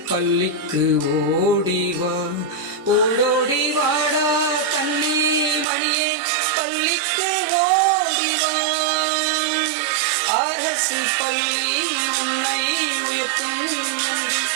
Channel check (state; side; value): drops out; left; at 5.7 s